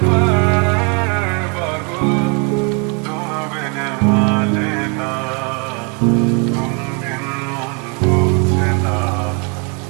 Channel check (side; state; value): left; quieter; 34.5 dB